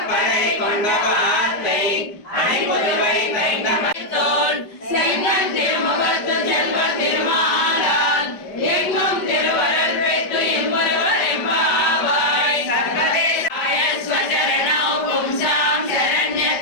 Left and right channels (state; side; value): late; right; 5.1 ms